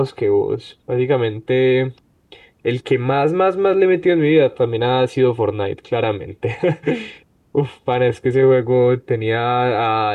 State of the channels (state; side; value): identical; both; correlation 1.00